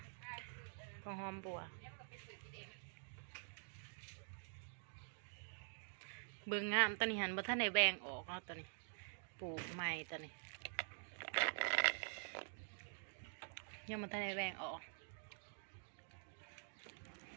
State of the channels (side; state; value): left; silent; digital silence